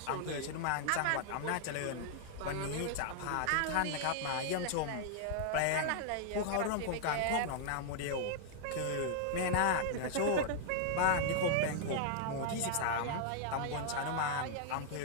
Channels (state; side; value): different; both; correlation -0.01